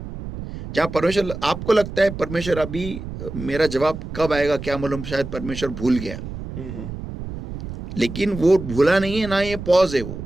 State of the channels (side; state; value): right; noise; rumble, 9 dB below the sound